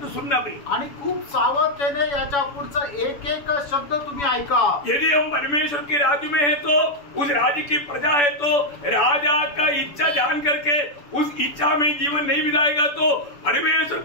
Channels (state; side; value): late; right; 7.0 ms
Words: सुनना भी. आणि खूप सावधतेने याच्या पुढचा एक एक शब्द तुम्ही ऐका. यदि हम परमेश्वर के राज्य में है तो उस राज्य की प्रजा है तो राजा का इच्छा जान करके उस इच्छा में जीवन नहीं बिताएगा तो परमेश्वर